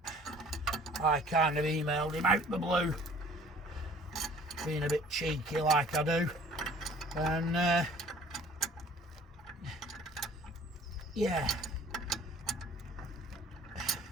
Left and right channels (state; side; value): normal; both; correlation 0.52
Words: I kind of emailed him out the blue, being a bit cheeky like I do, and yeah.